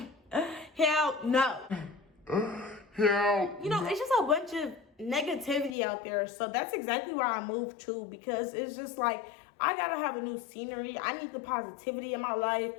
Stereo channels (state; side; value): drops out; right; at 5.8 s